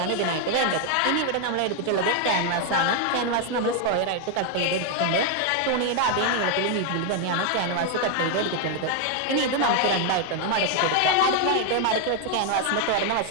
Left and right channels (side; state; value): both; different; correlation 0.01